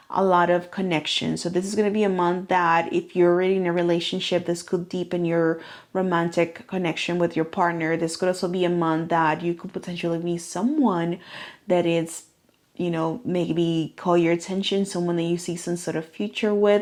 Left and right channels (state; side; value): identical; both; correlation 1.00